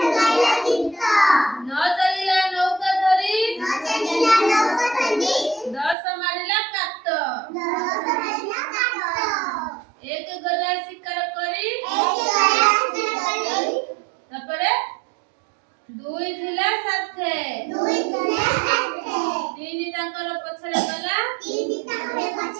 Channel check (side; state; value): left; drops out; at 6.0 s